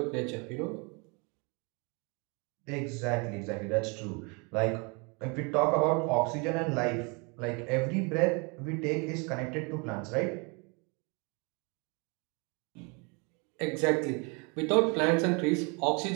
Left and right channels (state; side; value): quieter; left; 31.3 dB